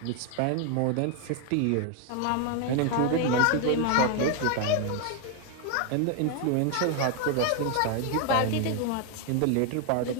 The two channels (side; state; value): both; different; correlation 0.01